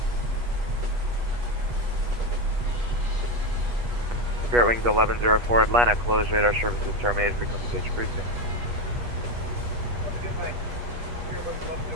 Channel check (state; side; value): late; left; 8.3 ms